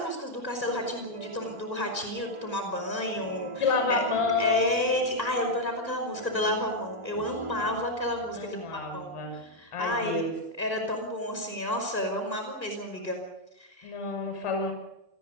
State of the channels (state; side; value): late; right; 1.5 ms